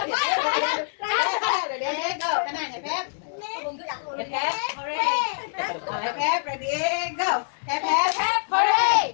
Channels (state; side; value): silent; right; digital silence